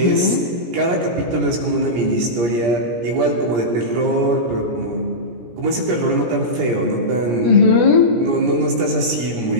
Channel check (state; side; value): late; left; 17 ms